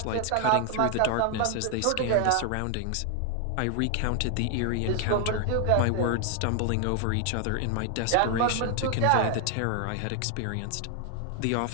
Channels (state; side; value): different; both; correlation 0.00